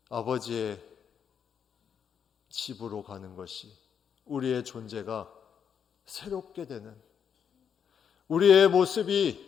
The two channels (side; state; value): right; quieter; 7.6 dB